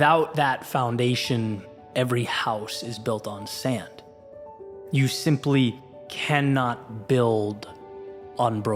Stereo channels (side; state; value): both; identical; correlation 1.00